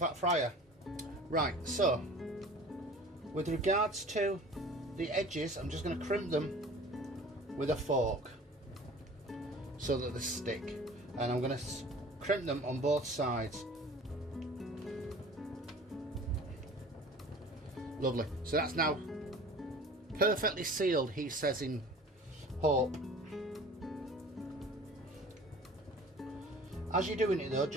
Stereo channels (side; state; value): both; normal; correlation 0.44